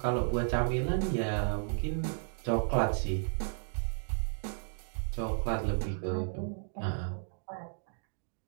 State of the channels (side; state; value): left; silent; digital silence